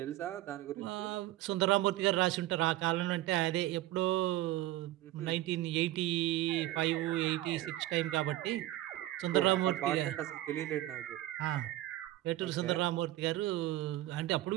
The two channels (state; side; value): quieter; left; 15.5 dB